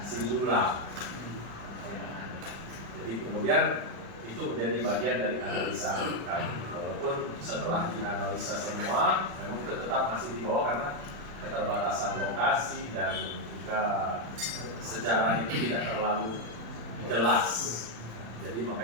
Sindulang. Jadi kemudian itu menjadi bagian dari analisa kami. Walaupun setelah dianalisa semua, memang tetap masih di bawah karena keterbatasan lokasi dan juga sejarah itu tidak terlalu jelas. Jadi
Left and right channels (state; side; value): late; left; 35 ms